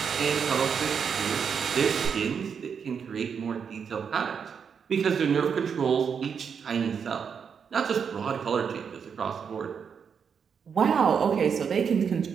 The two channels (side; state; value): left; quieter; 6.8 dB